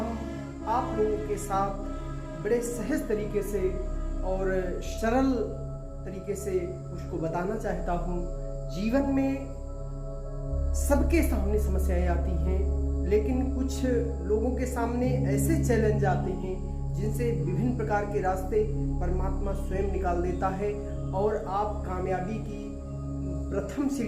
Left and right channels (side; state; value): both; identical; correlation 1.00